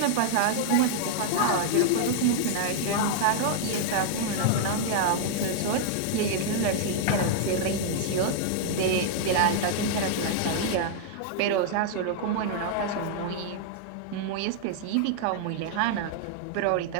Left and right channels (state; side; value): different; both; correlation -0.01